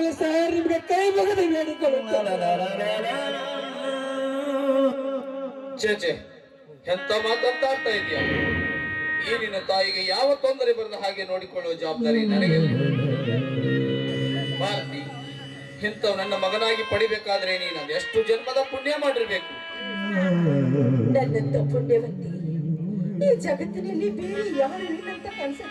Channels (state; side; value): identical; both; correlation 1.00